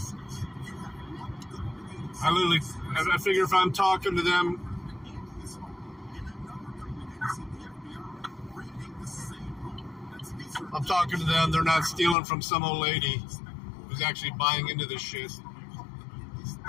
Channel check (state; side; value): drops out; right; at 12.2 s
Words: I figure if I'm talking to them, I'm talking to them, they're not stealing from some old lady who's actually buying into this shit.